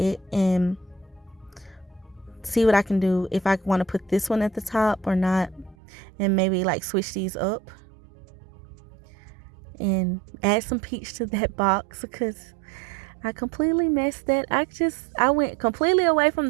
and see what I can do, if I want to put this one at the top or not, and maybe like switch these up and add some peach to that box, because I completely messed that. I went completely away from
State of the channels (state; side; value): drops out; left; at 5.8 s